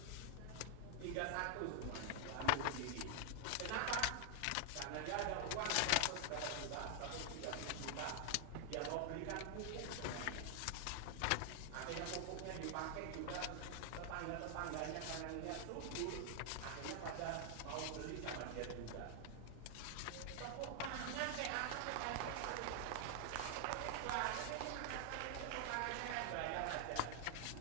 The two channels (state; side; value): different; both; correlation 0.00